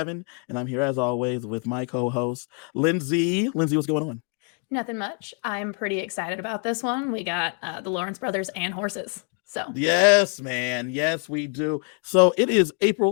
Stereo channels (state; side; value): quieter; right; 38.7 dB